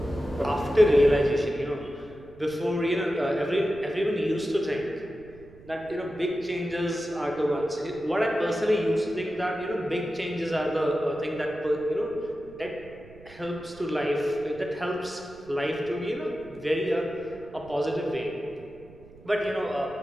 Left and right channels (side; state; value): right; noise; rumble, 22 dB below the sound